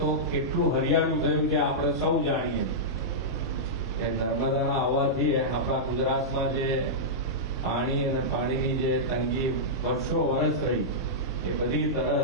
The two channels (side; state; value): both; normal; correlation -0.12